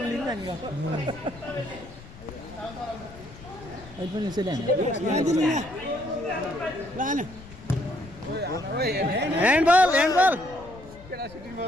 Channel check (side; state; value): left; noise; rumble, 18 dB below the sound